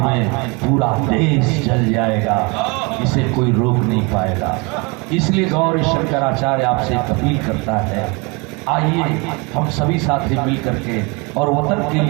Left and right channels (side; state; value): left; quieter; 29.0 dB